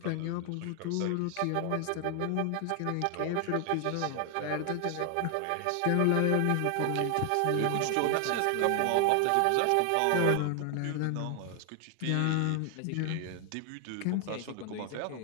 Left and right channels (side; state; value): both; different; correlation 0.00